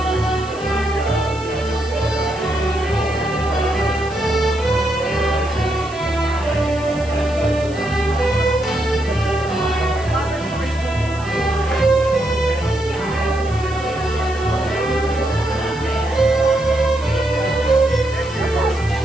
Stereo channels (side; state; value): right; noise; hiss, 21 dB below the sound